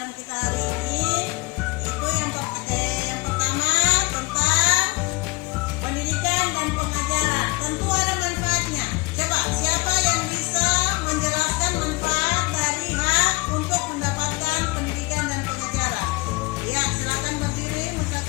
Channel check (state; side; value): quieter; right; 25.3 dB